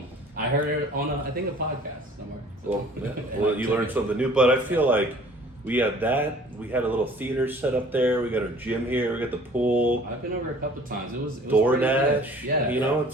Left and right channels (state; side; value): normal; both; correlation 0.51